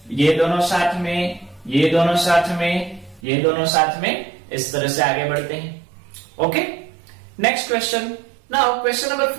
ये दोनों साथ में, ये दोनों साथ में, ये दोनों साथ में, इस तरह से आगे बढ़ते हैं। Okay, next question. Now question number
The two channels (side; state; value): left; drops out; at 3.2 s